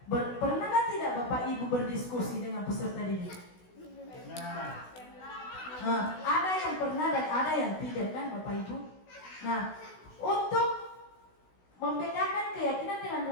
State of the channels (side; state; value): right; late; 16 ms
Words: Pernahkah tidak Bapak Ibu berdiskusi dengan peserta didik? Ada yang pernah dan ada yang tidak kan Bapak Ibu? Nah, untuk membedakan keyakinan